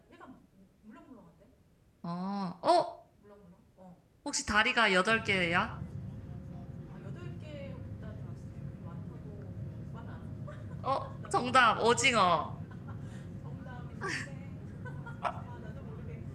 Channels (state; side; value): identical; both; correlation 1.00